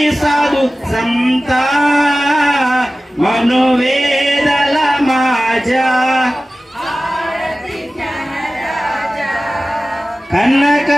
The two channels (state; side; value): normal; both; correlation 0.96